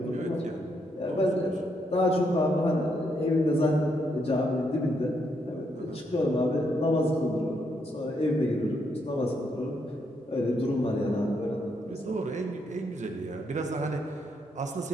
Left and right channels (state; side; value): normal; both; correlation 0.77